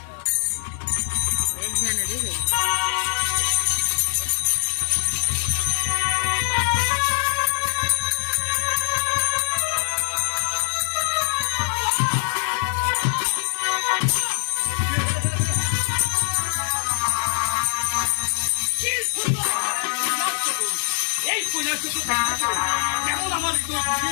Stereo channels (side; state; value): right; silent; 63 dB below the other